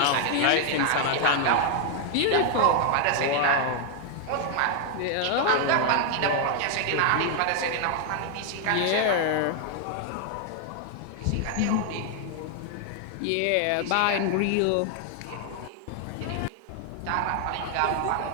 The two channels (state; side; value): different; both; correlation 0.00